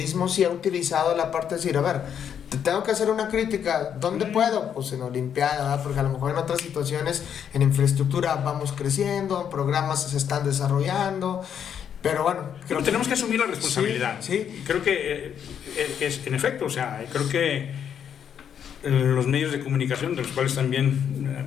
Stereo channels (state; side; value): quieter; right; 8.5 dB